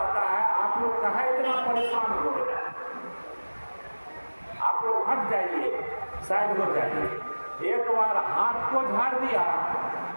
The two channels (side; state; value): both; inverted; correlation -1.00